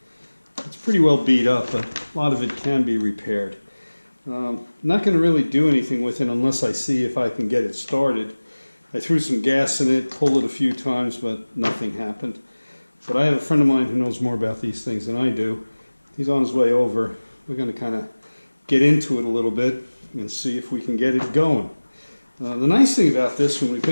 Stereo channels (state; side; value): inverted; both; correlation -1.00